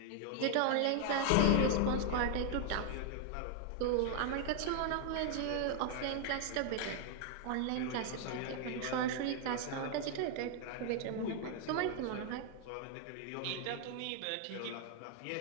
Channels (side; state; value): both; different; correlation 0.01